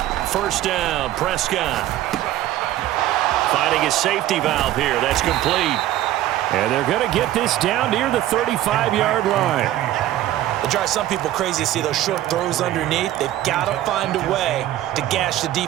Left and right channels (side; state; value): left; quieter; 13.8 dB